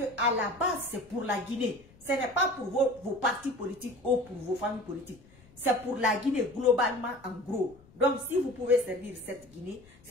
à la base, c'est pour la Guinée. Ce n'est pas pour vos partis politiques ou pour vos familles politiques. C'est pour la Guinée globalement en gros. Donc si vous pouvez servir cette Guinée,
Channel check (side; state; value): left; noise; rumble, 26 dB below the sound